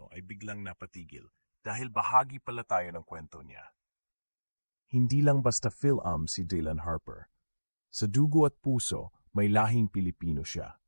ay biglang napatigil dahil bahagi pala tayo ng kwento niya. Hindi lang basta Phil-Am si Dylan Harper. Sa dugo at puso, may lahing Pilipino siya.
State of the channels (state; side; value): inverted; both; correlation -1.00